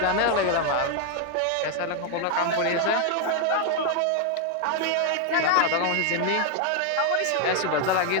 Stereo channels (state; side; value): different; both; correlation 0.00